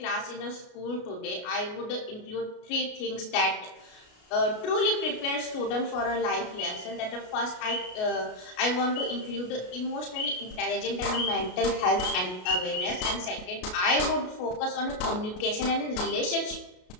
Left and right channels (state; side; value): late; right; 33 ms